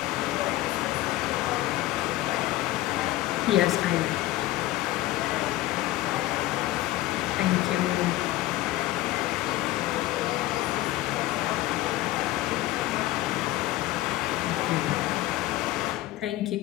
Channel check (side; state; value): right; quieter; 16.3 dB